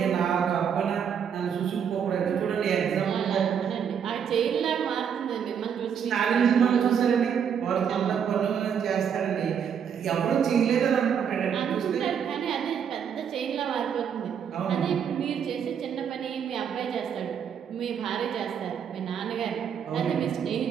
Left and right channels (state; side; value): quieter; left; 7.8 dB